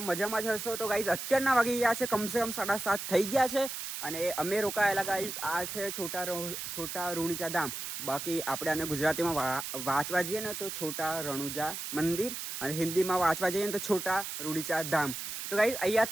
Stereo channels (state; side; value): noise; right; hiss, 6 dB below the sound